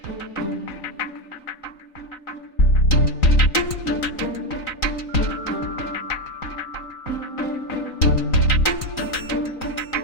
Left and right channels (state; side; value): late; right; 3.9 ms